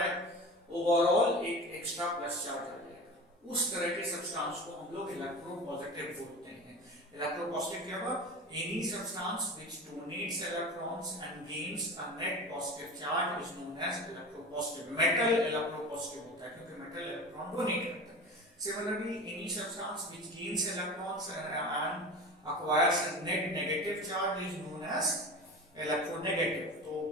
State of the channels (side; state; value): both; normal; correlation 0.33